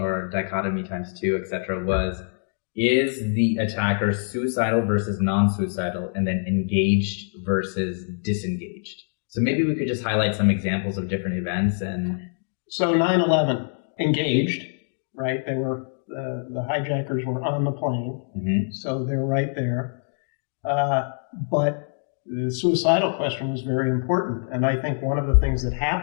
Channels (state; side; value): silent; right; digital silence